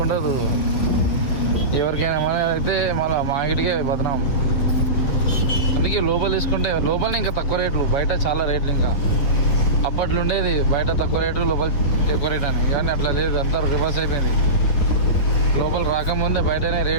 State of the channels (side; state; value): right; late; 7.2 ms